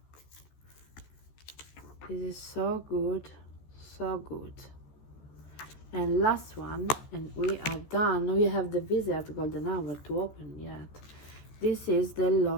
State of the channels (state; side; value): late; right; 14 ms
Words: This is so good, so good. And last one, and we are done. We have the Visit Golden Hour to open yet. This is the